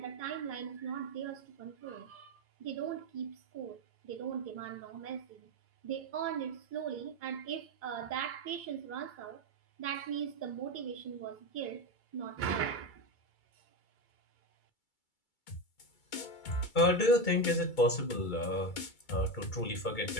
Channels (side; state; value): right; late; 2.3 ms